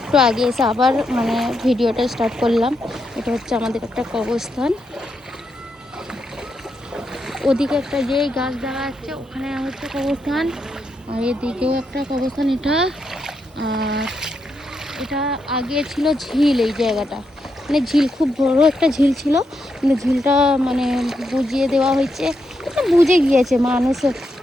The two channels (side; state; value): both; normal; correlation 0.82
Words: আগে এসে আবার মানে ভিডিওটা স্টার্ট করলাম। এটা হচ্ছে আমাদের একটা কবরস্থান, ওদিকে একটা যে গাছ দেখা যাচ্ছে ওখানে হচ্ছে কবরস্থান, আর এদিকেও একটা কবরস্থান। আর এটা আগে ছিল ঝিল, এই জায়গাটা মানে ঝিল, খুব বড় একটা ঝিল ছিল, কিন্তু ঝিলটা মানে বুঝিয়ে দেওয়া হয়েছে, বুঝে গিয়েছে মানুষ